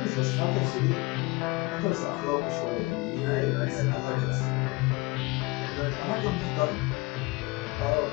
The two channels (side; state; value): right; quieter; 24.1 dB